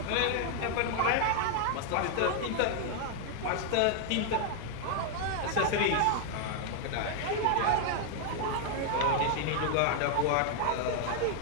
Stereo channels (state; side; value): different; both; correlation 0.00